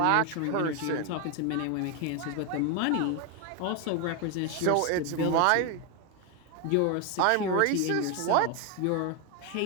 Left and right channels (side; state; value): both; different; correlation 0.01